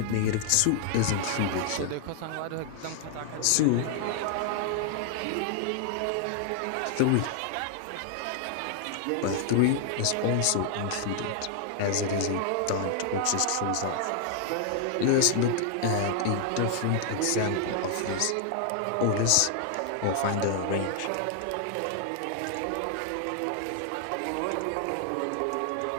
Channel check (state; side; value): different; both; correlation 0.00